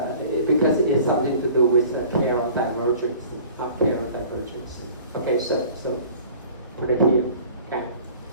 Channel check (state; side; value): inverted; both; correlation -0.47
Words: because it's something to do with Carroll divergence, not Carroll divergence. Okay, so put it here. Okay,